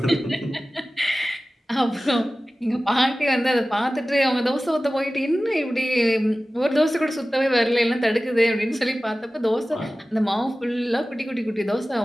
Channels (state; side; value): normal; both; correlation 0.96